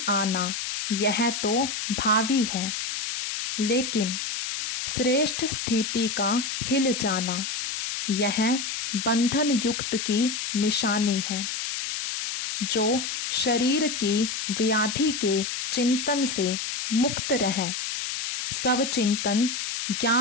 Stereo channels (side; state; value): left; noise; hiss, 4 dB below the sound